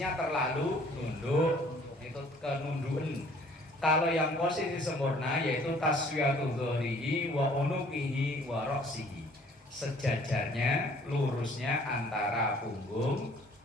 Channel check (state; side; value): normal; both; correlation 0.56